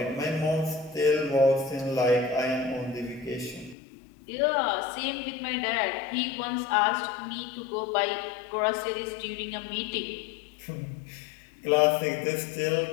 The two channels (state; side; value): drops out; right; at 3.8 s